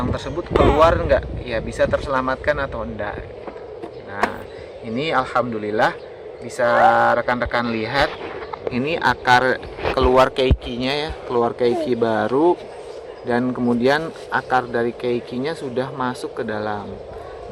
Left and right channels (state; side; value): identical; both; correlation 1.00